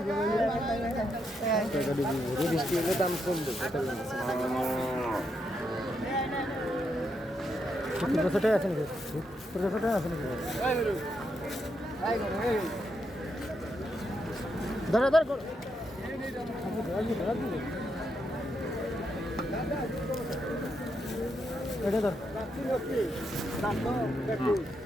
হলে দাম কমবে। ছোটাই আছে নাকি? ছোটাই আছে নাকি? ধরে ধরে এটা ধর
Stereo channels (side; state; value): both; normal; correlation 0.81